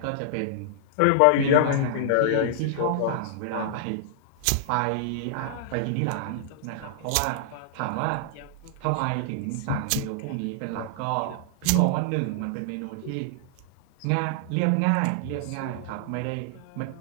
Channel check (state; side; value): different; both; correlation -0.01